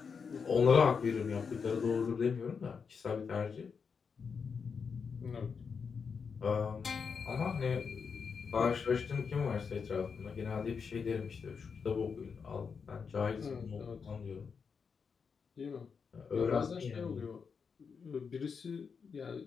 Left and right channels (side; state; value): right; quieter; 5.9 dB